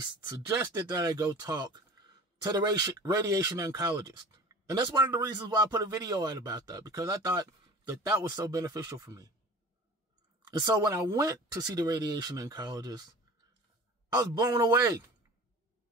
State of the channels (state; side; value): normal; both; correlation 0.39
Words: that I go talk to the radiation oncologist. And that's one of the reasons why I put a video out about that, because I thought that that was so beneficial for me. And so when I went to see the radiation oncologist, I was blown away.